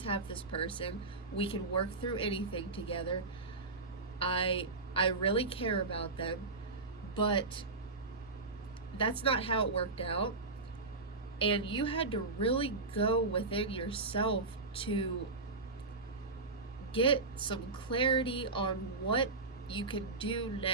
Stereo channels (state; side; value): quieter; left; 3.6 dB